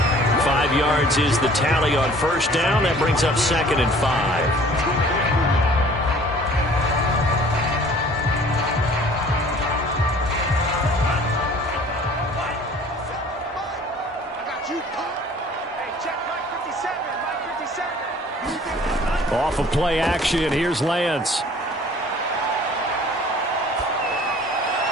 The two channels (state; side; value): normal; both; correlation 0.51